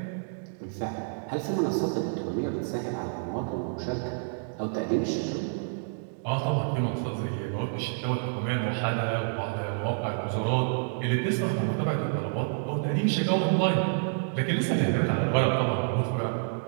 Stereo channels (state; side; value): silent; left; digital silence